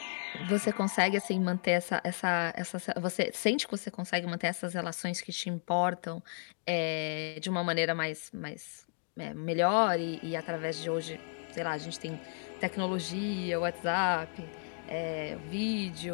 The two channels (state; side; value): silent; right; digital silence